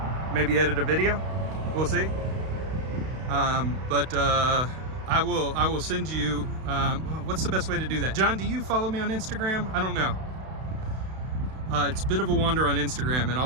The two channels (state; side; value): late; left; 32 ms